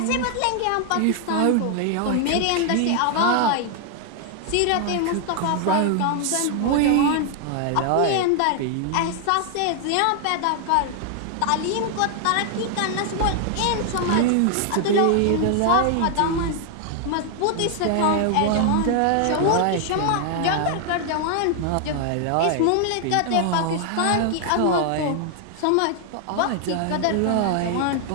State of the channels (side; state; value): both; different; correlation 0.00